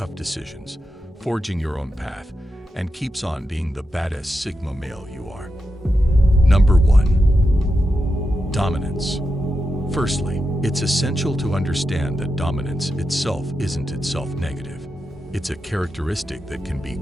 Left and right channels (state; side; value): normal; both; correlation 0.88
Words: decisions, forging your own path, and keeps on being the baddest Sigma male you are. Number 1. Dominance. Firstly, it's essential to understand that dominance itself isn't itself negative. It's a characteristic that can be